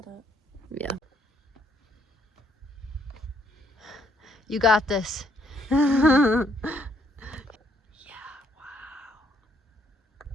it. Yeah. You got this. Yeah, wow.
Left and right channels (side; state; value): both; normal; correlation 0.68